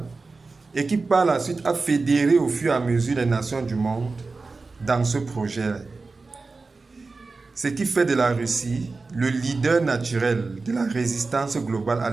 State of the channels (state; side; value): quieter; left; 3.9 dB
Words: et qui par la suite a fédéré au fur et à mesure les nations du monde dans ce projet. Ce qui fait de la Russie le leader naturel de la résistance globale à